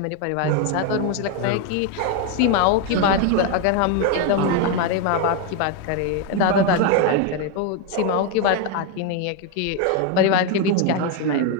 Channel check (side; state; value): both; different; correlation 0.01